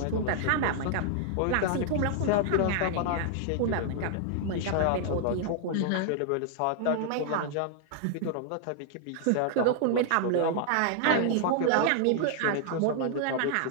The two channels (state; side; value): different; both; correlation 0.00